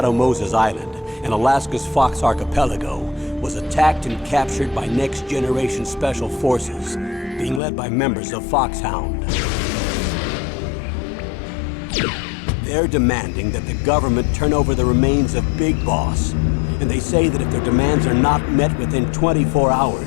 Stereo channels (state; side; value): drops out; right; at 7.6 s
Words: Moses Island in Alaska's Fox Archipelago was attacked and captured by Next Generation Special Forces, being led by members of Foxhound. They're demanding that the government turn over the remains of Big Boss, and they say that if their demands are not met within 24